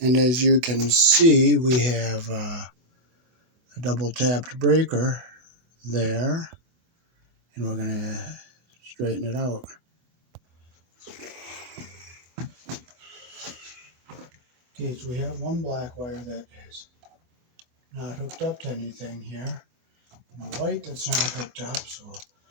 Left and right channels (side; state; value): left; late; 24 ms